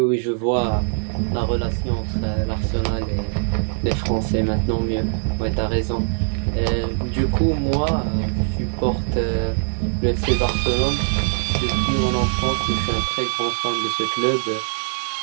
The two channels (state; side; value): silent; left; digital silence